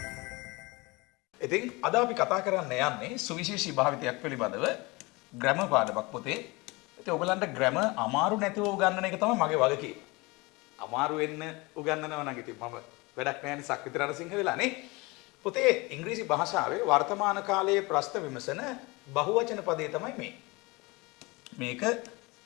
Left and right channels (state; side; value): quieter; right; 24.6 dB